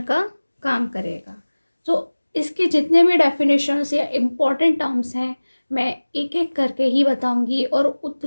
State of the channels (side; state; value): both; inverted; correlation -1.00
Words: का काम करेगा। तो इसके जितने भी डेफिनेशंस या इम्पॉर्टेंट टर्म्स हैं मैं एक एक करके ही बताऊंगी और